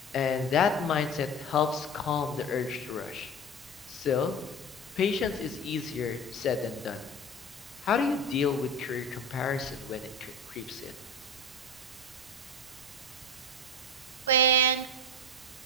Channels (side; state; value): both; normal; correlation 0.31